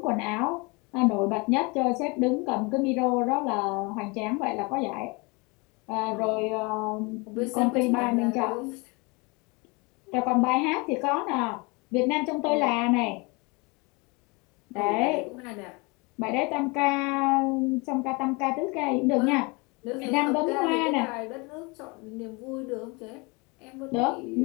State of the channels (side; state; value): right; quieter; 28.1 dB